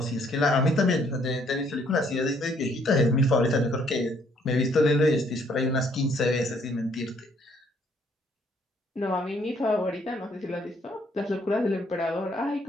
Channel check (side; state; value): both; normal; correlation 0.66